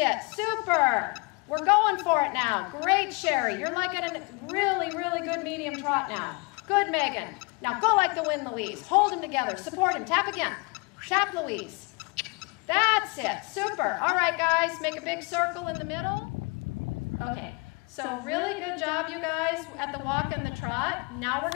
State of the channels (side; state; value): right; quieter; 29.6 dB